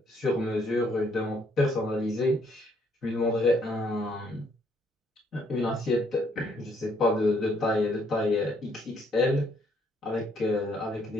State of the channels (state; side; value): normal; both; correlation 0.69